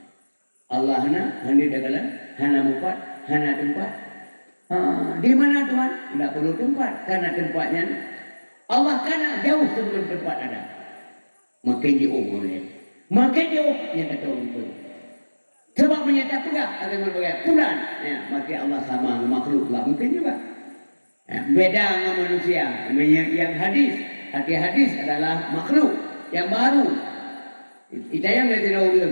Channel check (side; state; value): both; inverted; correlation -1.00